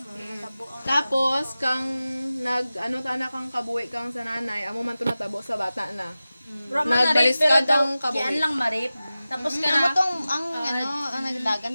natabo ang Tapos kang ano tana kang kabuhi kang sa nanay amo man to natabo sa bata na. Nagbalis ka daw kabuhi. Yan lang marip. Tapos ka Ano na, tong ang ang nagdagan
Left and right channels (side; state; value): both; inverted; correlation -0.96